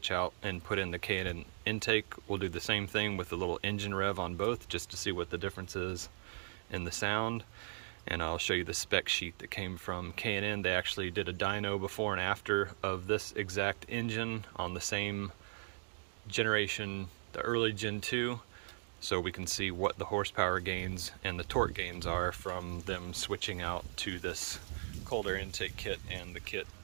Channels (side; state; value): left; silent; digital silence